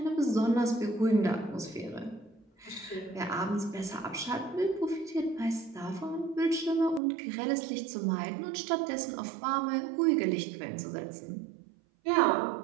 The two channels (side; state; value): left; drops out; at 7.0 s